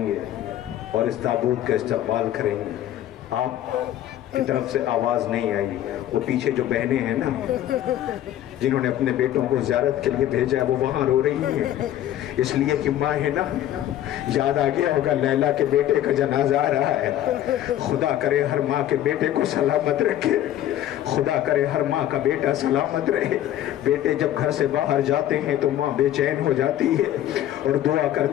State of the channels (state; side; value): quieter; right; 12.3 dB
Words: گے اور اس تابوت کا استقبال کریں گے آپ کی طرف سے آواز نہیں آئی وہ پیچھے جو بہنیں ہیں نا جنہوں نے اپنے بیٹوں کو زیارت کے لیے بھیجا ہے وہ وہاں رو رہی ہیں اس لیے کہ ماں ہے نا یاد آ گیا ہوگا لیلا کے بیٹے کا جنازہ آ رہا ہے خدا کرے ہر ماں کے بیٹے کو سلامت رکھے خدا کرے ہر ماں کا بیٹا سلامت رہے بیٹے جب گھر سے باہر جاتے ہیں تو ماں بے چین ہو جاتی ہے اور دعا